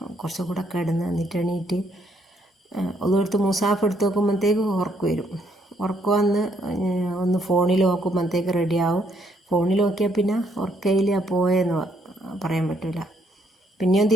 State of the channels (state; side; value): normal; both; correlation 0.71